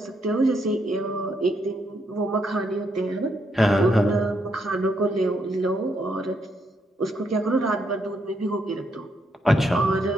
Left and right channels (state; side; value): normal; both; correlation 0.77